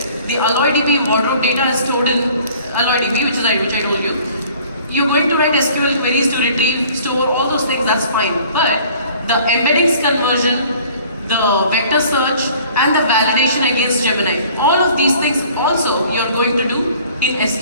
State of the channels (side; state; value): both; inverted; correlation -0.52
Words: the AlloyDB wardrobe data is stored in AlloyDB, which I told you. You're going to write SQL queries to retrieve, store, all those things, that's fine. But the embeddings conversion, the vector search, and the validation against Gemini, all of these things also you're going to do in